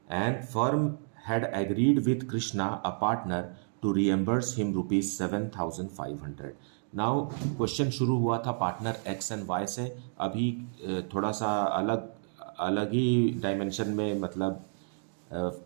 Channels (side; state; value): left; silent; digital silence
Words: and firm had agreed with Krishna, a partner, to reimburse him rupees 7,500. Now question शुरू हुआ था पार्टनर एक्स एंड वाई से, अभी थोड़ा सा अलग ही डायमेंशन में मतलब